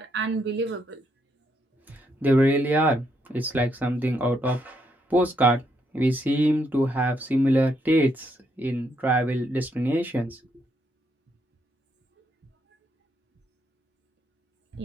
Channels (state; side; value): normal; both; correlation 0.76